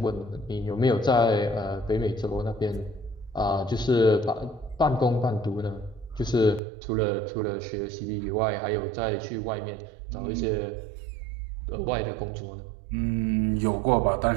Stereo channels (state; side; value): drops out; left; at 6.6 s